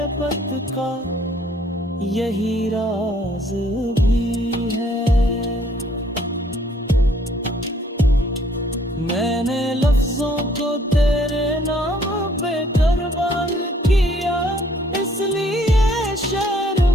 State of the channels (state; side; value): normal; both; correlation 0.62